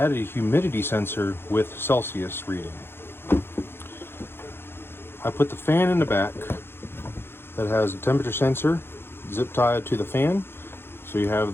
a humidity sensor with Celsius reading. I put the fan in the back that has a temperature sensor zip tied to the fan, so you have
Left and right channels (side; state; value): right; late; 0.11 ms